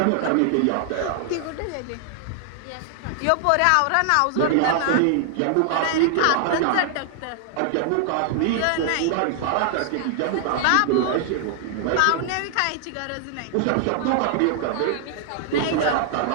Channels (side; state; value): both; different; correlation 0.00